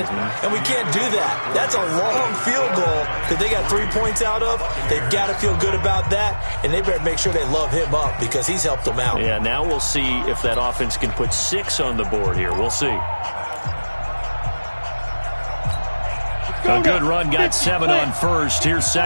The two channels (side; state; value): both; inverted; correlation -1.00